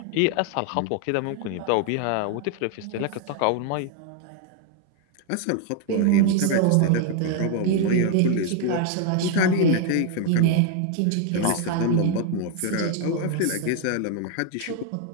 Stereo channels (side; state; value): both; different; correlation 0.00